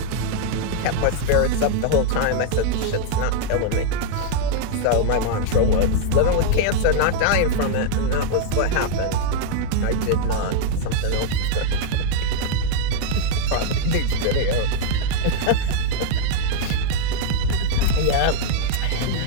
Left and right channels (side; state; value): both; different; correlation -0.01